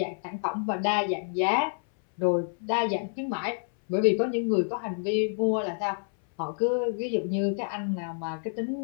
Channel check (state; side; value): silent; right; 59 dB below the other